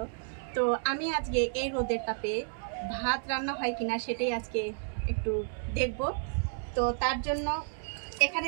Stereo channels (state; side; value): silent; left; digital silence